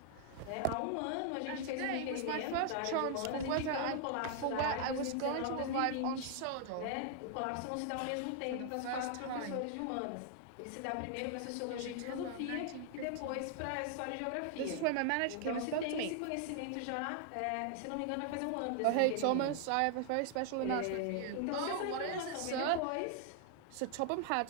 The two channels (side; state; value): both; different; correlation 0.00